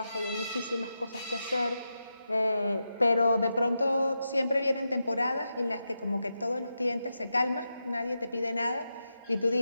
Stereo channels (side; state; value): both; inverted; correlation -0.88